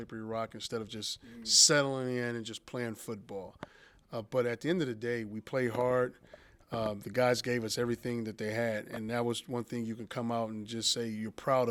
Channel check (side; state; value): both; identical; correlation 1.00